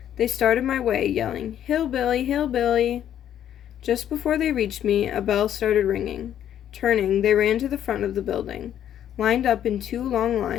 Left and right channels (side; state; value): right; quieter; 10.5 dB